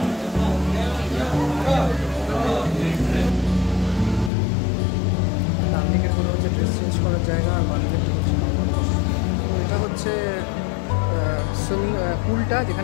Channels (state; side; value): drops out; right; at 4.3 s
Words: ডান দিকের কোনো হচ্ছে ড্রেস পুলটা